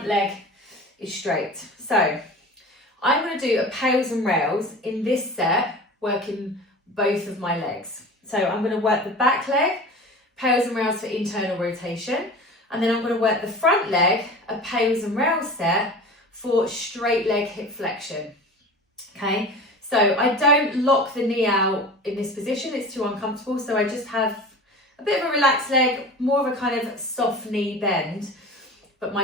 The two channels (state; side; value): normal; both; correlation 0.36